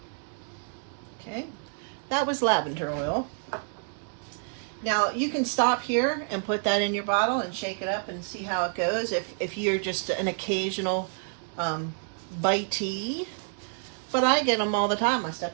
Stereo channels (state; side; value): silent; left; 57 dB below the other